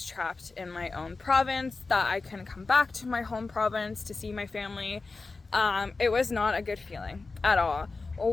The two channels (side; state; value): right; quieter; 3.9 dB